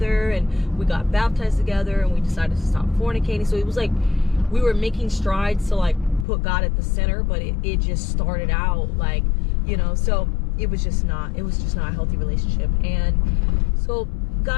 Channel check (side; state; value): right; drops out; at 6.2 s